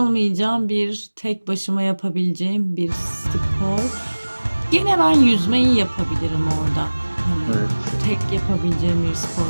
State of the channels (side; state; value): both; inverted; correlation -1.00